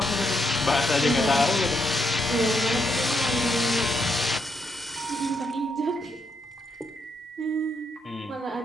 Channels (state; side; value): normal; both; correlation 0.78